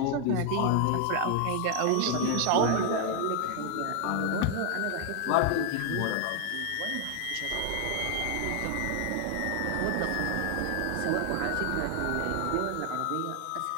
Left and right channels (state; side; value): different; both; correlation 0.00